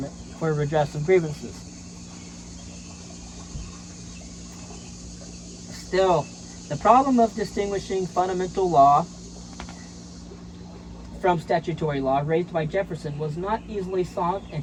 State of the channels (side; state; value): both; identical; correlation 1.00